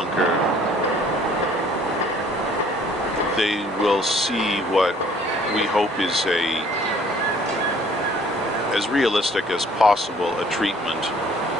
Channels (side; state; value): both; normal; correlation 0.57